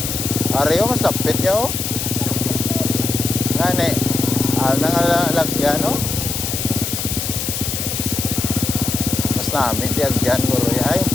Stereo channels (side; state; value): left; noise; hiss, 3 dB below the sound